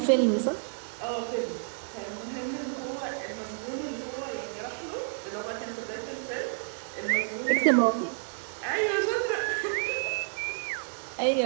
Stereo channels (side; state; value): left; silent; digital silence